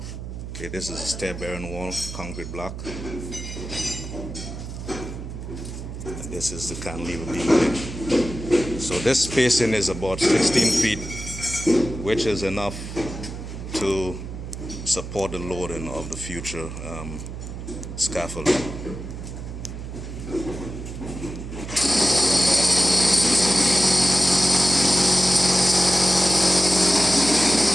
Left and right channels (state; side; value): noise; right; hum, 9 dB below the sound